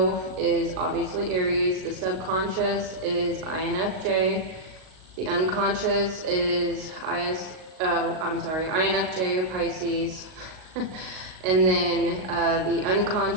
is obviously Aries, the subconscious is INFJ, the unconscious is INFJ or Pisces, and then the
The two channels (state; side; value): late; left; 38 ms